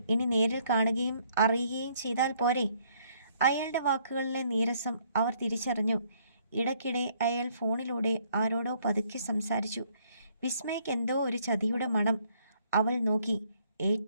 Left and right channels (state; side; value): inverted; both; correlation -0.66